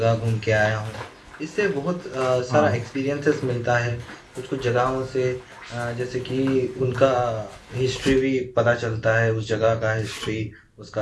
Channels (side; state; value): both; identical; correlation 1.00